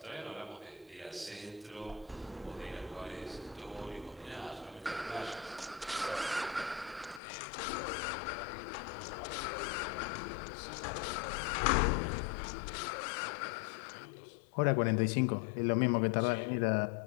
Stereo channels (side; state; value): right; drops out; at 7.2 s